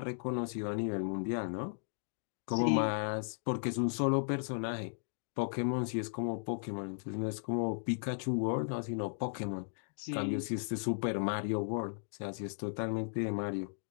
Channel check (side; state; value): right; silent; digital silence